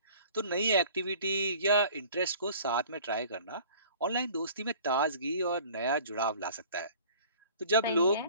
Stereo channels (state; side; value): inverted; both; correlation -0.48